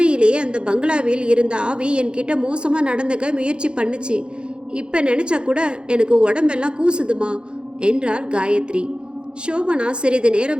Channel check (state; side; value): late; left; 0.053 ms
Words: அந்த பங்களாவில் இருந்த ஆவி என்கிட்ட மோசமாக நடந்துக்க முயற்சி பண்ணுச்சு. இப்போ நினச்சா கூட எனக்கு உடம்பெல்லாம் கூசுதுமா என்றாள் காயத்ரி. சோபனா சிறிது